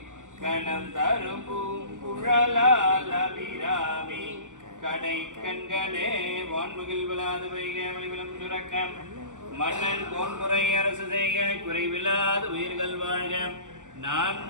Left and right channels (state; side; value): late; left; 0.86 ms